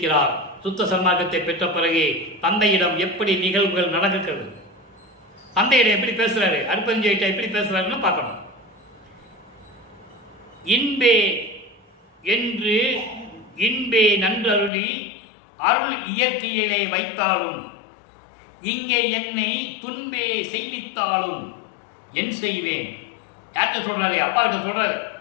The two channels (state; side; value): drops out; right; at 14.7 s